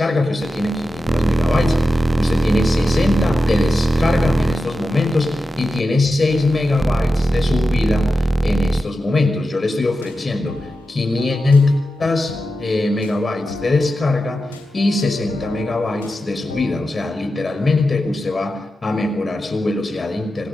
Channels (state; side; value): normal; both; correlation 0.91